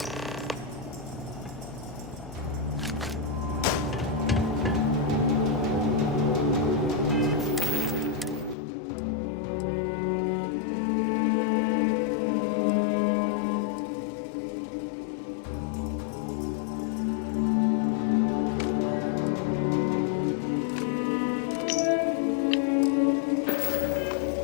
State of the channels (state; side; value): drops out; right; at 8.6 s